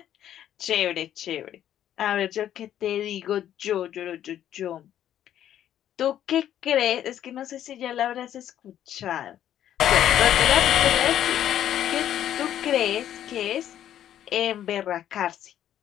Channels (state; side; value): quieter; right; 11.0 dB